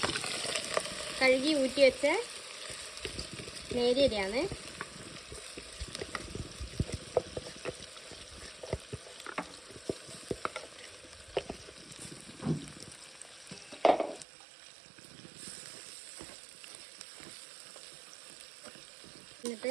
കഴുകി ഊറ്റി വെച്ച നേരിയ അരിയാണ്.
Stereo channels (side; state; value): left; drops out; at 14.2 s